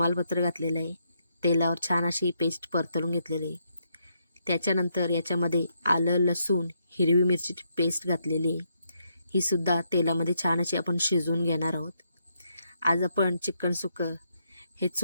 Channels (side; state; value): both; inverted; correlation -0.77